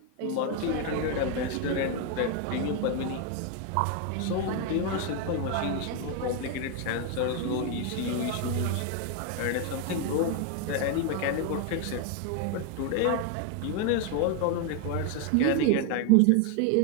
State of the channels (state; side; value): different; both; correlation 0.01